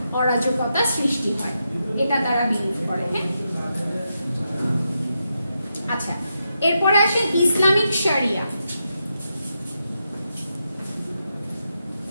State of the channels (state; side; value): inverted; both; correlation -0.85